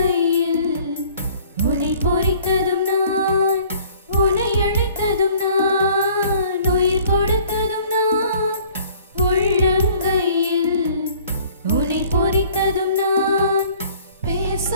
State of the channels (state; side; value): inverted; both; correlation -0.54